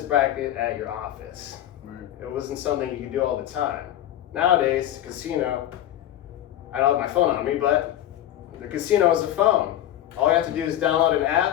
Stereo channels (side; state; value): right; quieter; 12.4 dB